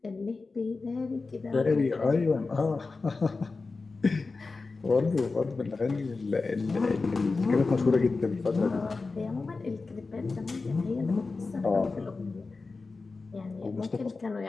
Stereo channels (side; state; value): right; quieter; 4.0 dB